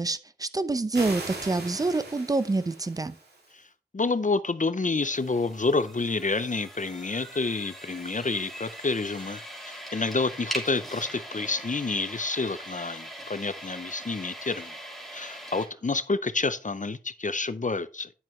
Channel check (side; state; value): both; normal; correlation 0.51